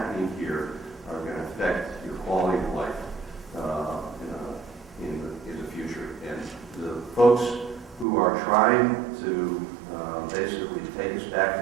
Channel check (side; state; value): left; drops out; at 8.1 s